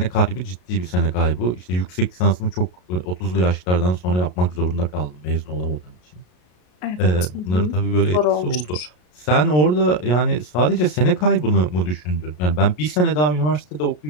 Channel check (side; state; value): right; late; 33 ms